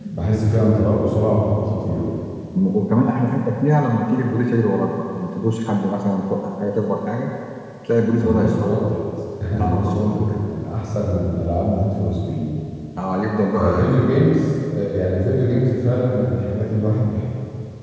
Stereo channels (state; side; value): identical; both; correlation 1.00